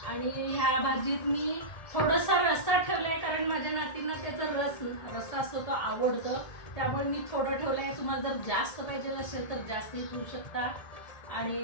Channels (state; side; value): late; right; 1.7 ms